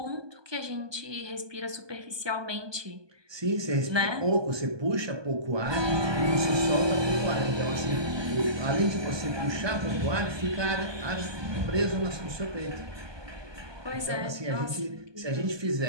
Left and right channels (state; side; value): late; left; 1.2 ms